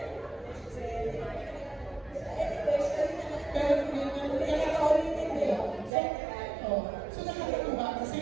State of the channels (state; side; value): drops out; left; at 5.9 s